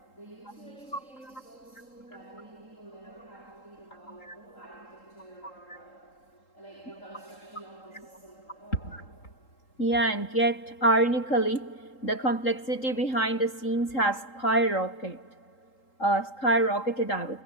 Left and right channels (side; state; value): right; late; 3.8 ms